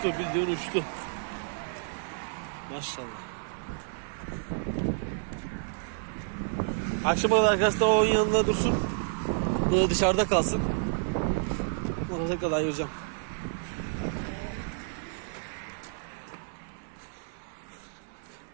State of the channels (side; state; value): left; silent; 58 dB below the other